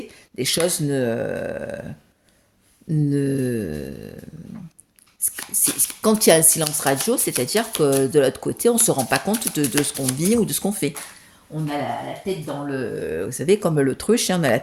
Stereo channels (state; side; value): identical; both; correlation 1.00